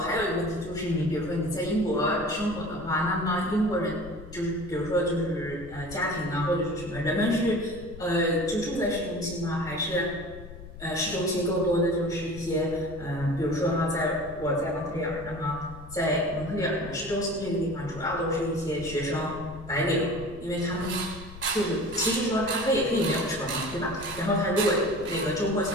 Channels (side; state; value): left; noise; rumble, 15 dB below the sound